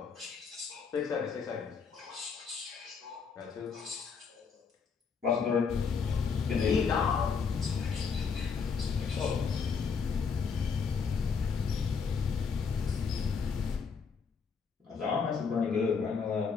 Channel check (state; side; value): quieter; right; 5.6 dB